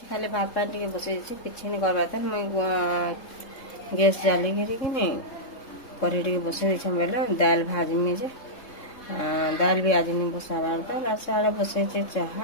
खाली भात पानी के बसे छे किछि नहीं करबा त मैं गैस जाली के नहीं करे के बसे छे बेले दाल भाजी में जे दाल भी आज नहीं बसाबार तो लास्ट बसे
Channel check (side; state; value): right; late; 3.7 ms